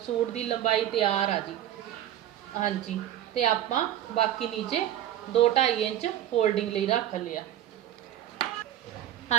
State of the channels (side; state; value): left; quieter; 11.9 dB